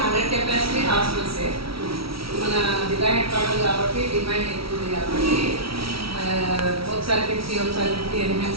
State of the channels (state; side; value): late; left; 0.75 ms